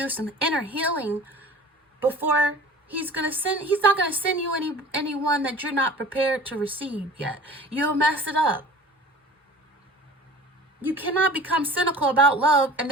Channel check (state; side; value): normal; both; correlation 0.42